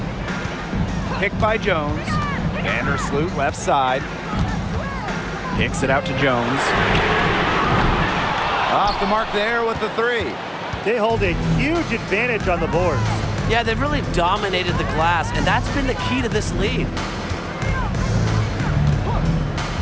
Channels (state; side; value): identical; both; correlation 1.00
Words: Picked by Jones. Vandersloot left side. Kicks it out to Jones. Off the mark there with the 3. They hold a huge advantage on the boards. Yeah, they've really dominated the glass, and that's been the key to this lead.